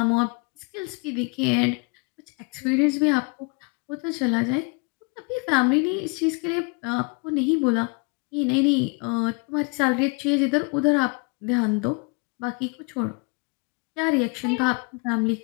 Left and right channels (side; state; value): right; quieter; 32.4 dB